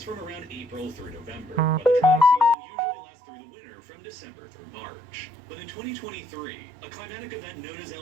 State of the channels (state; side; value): drops out; left; at 2.6 s